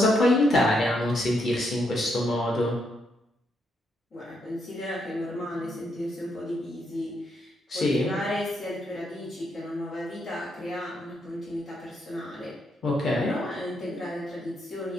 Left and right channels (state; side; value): normal; both; correlation 0.78